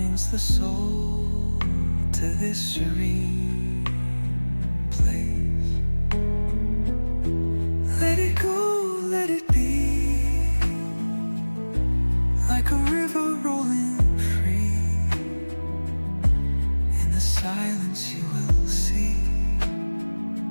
the soul to this serene place. Let it go, let it be, like a river rolling free. In the silence you will see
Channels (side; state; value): both; inverted; correlation -1.00